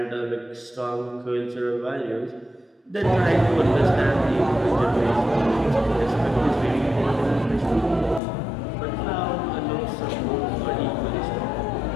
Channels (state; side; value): drops out; right; at 8.2 s